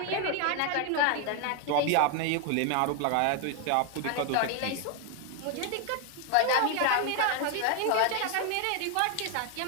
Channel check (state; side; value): different; both; correlation 0.01